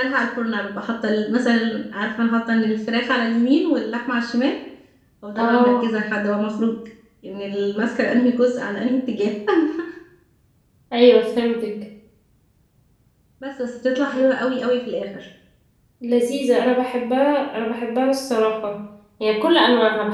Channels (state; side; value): identical; both; correlation 1.00